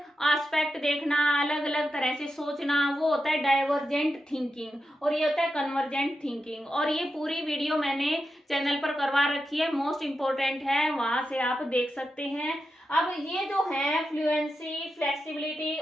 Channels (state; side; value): normal; both; correlation 0.88